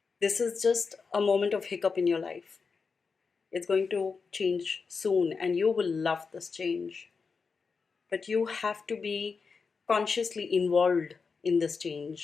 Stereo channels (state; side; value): quieter; right; 5.0 dB